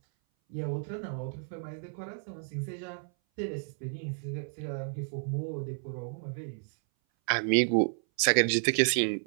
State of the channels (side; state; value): left; silent; 57 dB below the other